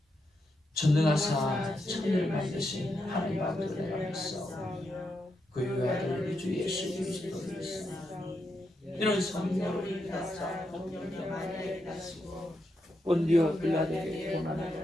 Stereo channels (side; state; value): both; normal; correlation 0.83